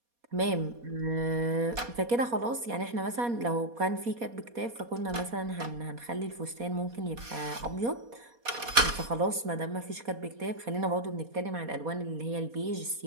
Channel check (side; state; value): left; late; 4.2 ms